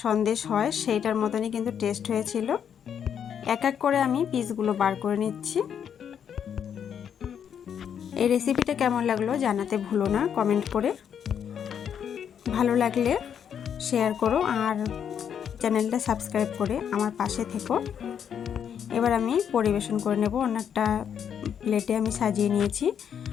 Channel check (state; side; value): quieter; right; 8.3 dB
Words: সন্দেশ হয় সেইটার মতনই কিন্তু টেস্ট হয়েছিল। এক এক করে আমি পিসগুলো বার করে নিচ্ছি। এই রেসিপিটা কেমন লাগলো জানাতে ভুলো না কমেন্ট করে। ভালো লাগলে শেয়ার করো আর চ্যানেলটা সাবস্ক্রাইব করে আমার পাশে থেকো। এবার আমি পরিবেশন করে নেব। অন্য একটা প্লেটে আমি সাজিয়ে নিয়েছি।